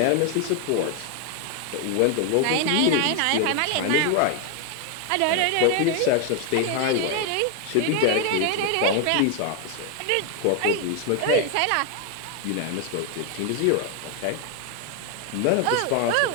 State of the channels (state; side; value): different; both; correlation 0.01